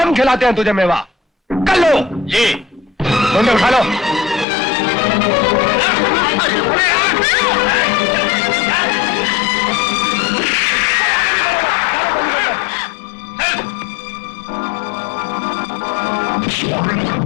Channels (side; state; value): right; drops out; at 4.5 s